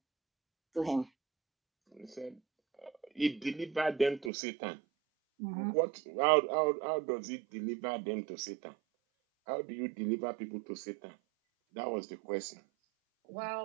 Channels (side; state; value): left; drops out; at 4.3 s